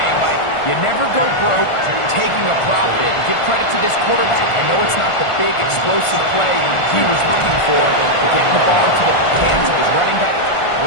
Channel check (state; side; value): late; right; 1.4 ms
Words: Mike. You never go broke taking a profit. Give credit to this quarterback. I know it's not the big explosive play he was looking for, but getting the ball into the hands of his running back